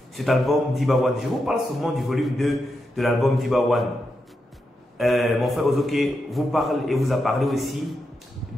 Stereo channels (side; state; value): both; normal; correlation 0.86